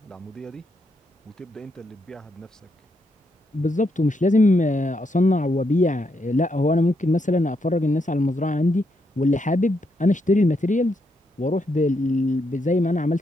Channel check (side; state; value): both; normal; correlation 0.79